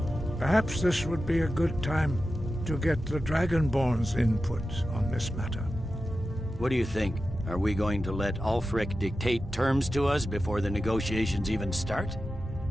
Perhaps this would be a good time to get the Dragonborn's input on this matter. What do you think? Are we going to let Ulfric dictate terms to us before the negotiations even start?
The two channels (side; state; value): both; normal; correlation 0.92